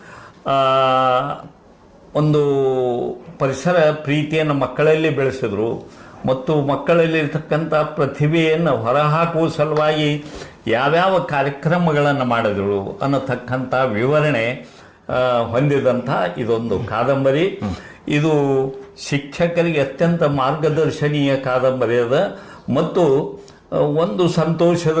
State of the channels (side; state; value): both; identical; correlation 1.00